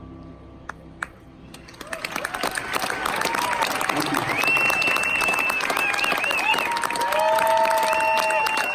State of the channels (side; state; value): both; identical; correlation 1.00